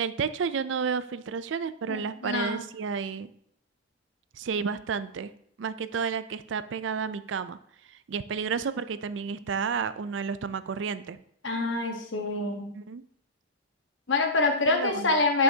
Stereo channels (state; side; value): normal; both; correlation -0.14